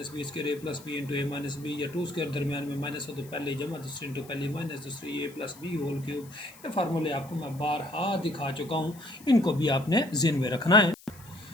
बी स्क्वायर, ए प्लस बी इंटू ए माइनस बी, या 2 स्क्वायर दरमियान में माइनस हो तो पहले जमा, दूसरी इंटू पहले माइनस दूसरी, ए प्लस बी होल क्यूब। ये फार्मूले आपको मैं बारहा दिखा चुका हूँ, इनको भी आपने ज़हन में रखना है।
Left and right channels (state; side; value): noise; left; hiss, 22 dB below the sound